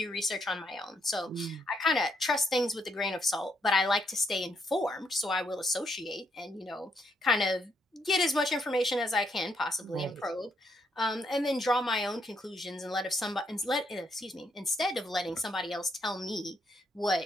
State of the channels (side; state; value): both; normal; correlation 0.75